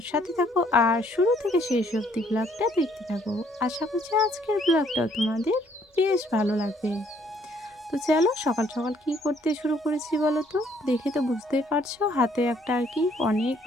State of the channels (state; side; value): normal; both; correlation 0.65